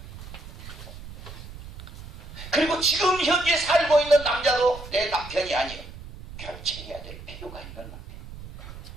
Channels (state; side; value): noise; right; rumble, 14 dB below the sound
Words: 그리고 지금 현재 살고 있는 남자도 내 남편이 아니에요. 결정해야 될 필요가 있는 남편.